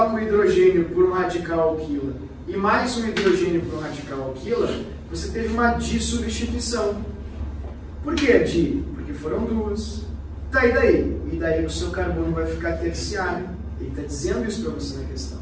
o hidrogênio por um radical alquila e mais um hidrogênio por um radical alquila, você teve uma dissubstituição. Por que di? Porque foram 2. Tá, e daí? E daí o seu carbono vai ficar terciário. Ele está dizendo isso para você na questão.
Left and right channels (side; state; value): both; identical; correlation 1.00